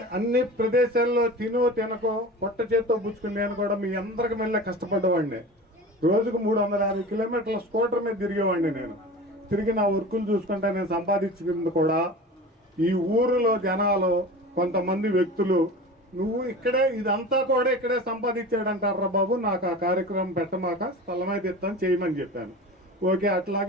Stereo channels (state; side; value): normal; both; correlation 0.34